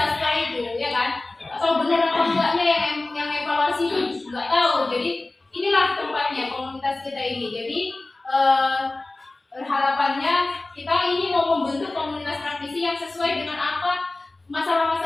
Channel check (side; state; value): right; quieter; 3.0 dB